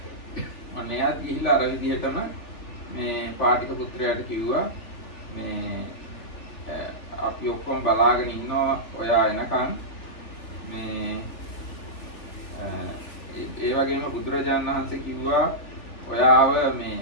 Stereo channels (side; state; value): right; late; 3.4 ms